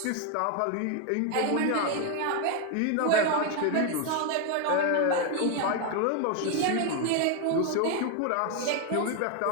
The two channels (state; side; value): different; both; correlation 0.01